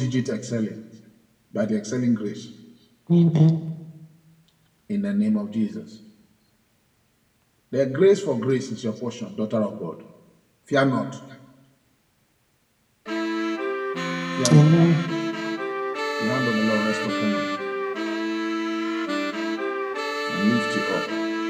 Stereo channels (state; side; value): identical; both; correlation 1.00